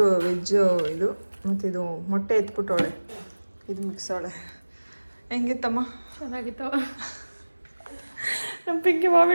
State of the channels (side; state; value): both; inverted; correlation -1.00